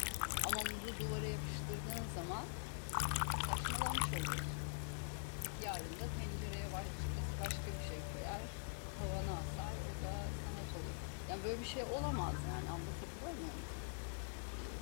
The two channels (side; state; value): right; silent; digital silence